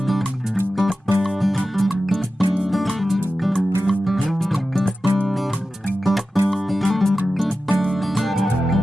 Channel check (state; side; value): normal; both; correlation 0.94